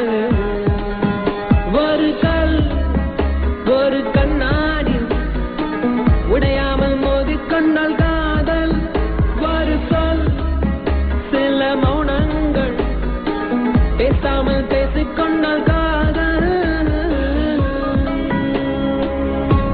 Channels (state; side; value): identical; both; correlation 1.00